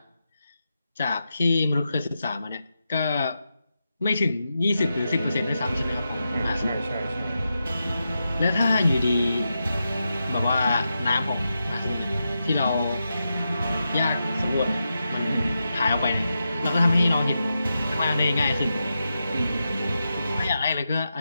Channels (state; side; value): inverted; both; correlation -0.88